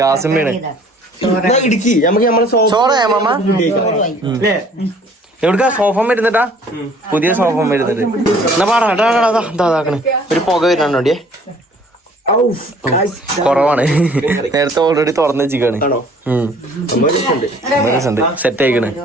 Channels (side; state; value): both; normal; correlation 0.55